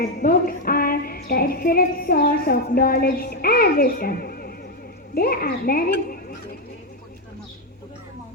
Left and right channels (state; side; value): normal; both; correlation 0.04